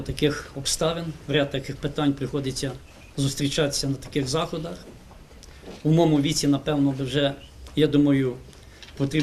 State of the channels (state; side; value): identical; both; correlation 1.00